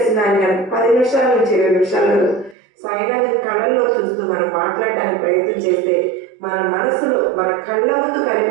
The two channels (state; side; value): drops out; left; at 2.6 s